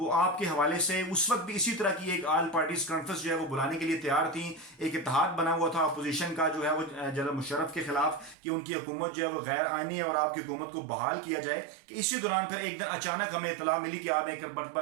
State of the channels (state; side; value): drops out; left; at 8.3 s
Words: آپ کے حوالے سے اس وقت بھی اسی طرح کی ایک آل پارٹیز کانفرنس جو ہے وہ بلانے کے لیے تیار تھیں. ایک اتحاد بنا ہوا تھا اپوزیشن کا جو ہے وہ جنرل مشرف کے خلاف کہ ان کی حکومت جو ہے وہ غیر آئینی ہے اور آپ کی حکومت کو بحال کیا جائے. کہ اسی دوران پھر ایک دن اچانک ہمیں اطلاع ملی کہ آپ ایک مرتبہ